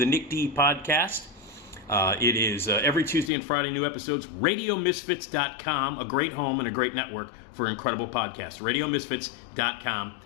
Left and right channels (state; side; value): drops out; right; at 3.3 s